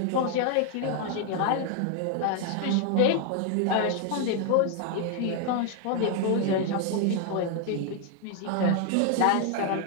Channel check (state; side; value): different; both; correlation 0.00